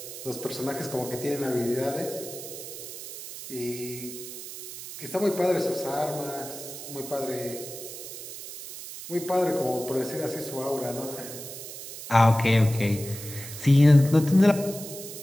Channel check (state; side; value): noise; right; hiss, 11 dB below the sound